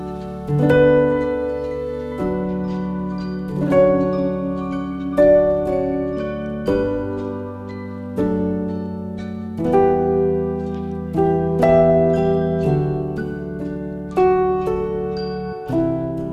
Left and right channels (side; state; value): both; identical; correlation 1.00